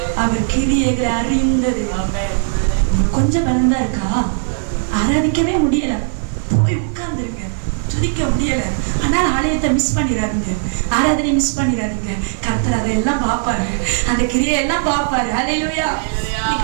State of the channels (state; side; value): silent; left; digital silence